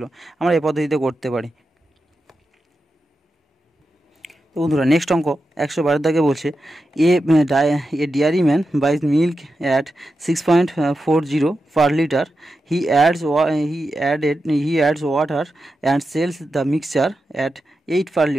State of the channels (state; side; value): normal; both; correlation 0.89